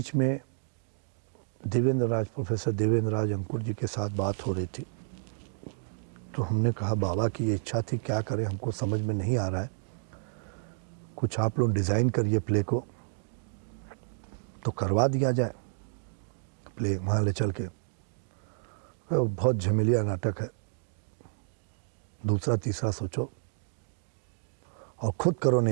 में प्रोफेसर देवेंद्र राज अंकुर जी के साथ बात हो रही थी, तो हमने कहा बाबा की ये इच्छा थी, क्या करें, हमको समझ में नहीं आ रहा है, कुछ आप लोग डिज़ाइन करिए प्ले को, तो करवा दिया जाए प्ले वहाँ ले चल के। तो बहुत झमेलिया नाटक है, दूसरा तीसरा सोचो और खुद करो,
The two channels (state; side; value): silent; left; digital silence